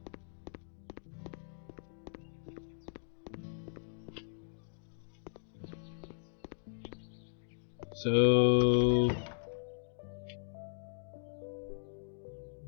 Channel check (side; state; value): right; silent; digital silence